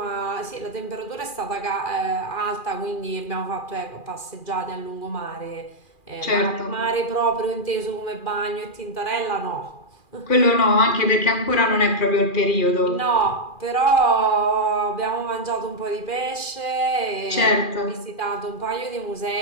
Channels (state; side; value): late; right; 2.4 ms